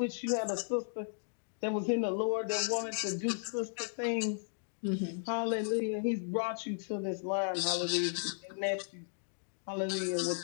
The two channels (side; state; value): right; silent; digital silence